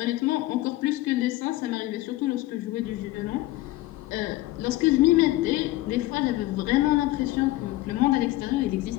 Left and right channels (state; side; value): quieter; right; 17.3 dB